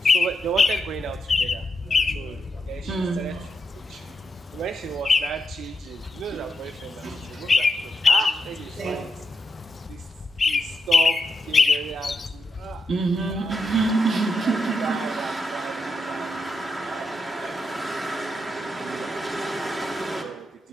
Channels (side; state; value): both; normal; correlation 0.85